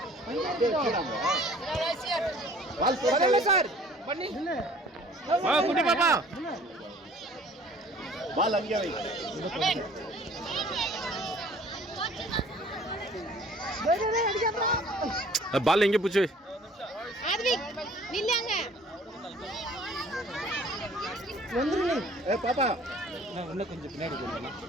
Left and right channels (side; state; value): both; normal; correlation 0.52